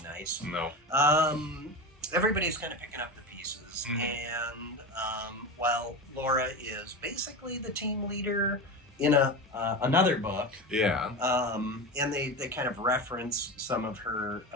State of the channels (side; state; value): both; normal; correlation 0.24